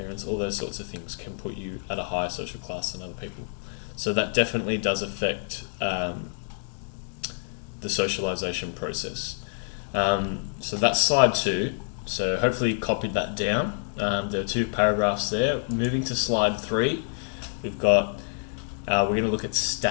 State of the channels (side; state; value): right; silent; digital silence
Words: All those sorts of things can put you at a higher social class than other people. So that definitely does affect the socialization process. So that's slide 2. So hopefully you copied that down. There are 2 paragraphs there. Moving to slide 3, we've got, we're going to look at